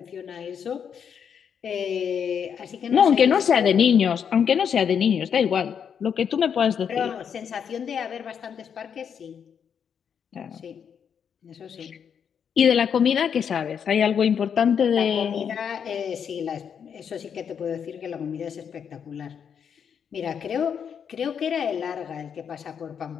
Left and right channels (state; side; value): quieter; right; 7.6 dB